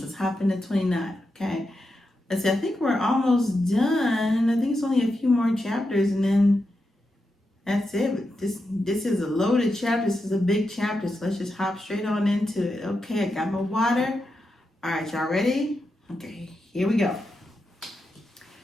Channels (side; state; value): both; normal; correlation 0.87